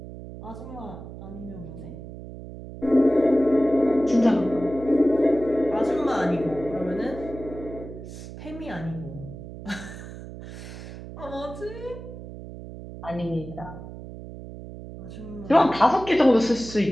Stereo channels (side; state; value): right; noise; hum, 12 dB below the sound